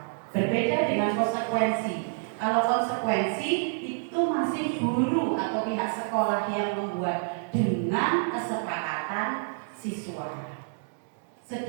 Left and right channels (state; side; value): silent; left; digital silence